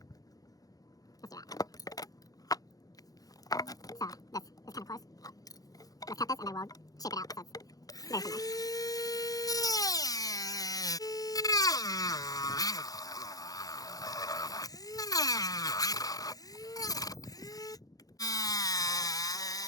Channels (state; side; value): late; right; 0.18 ms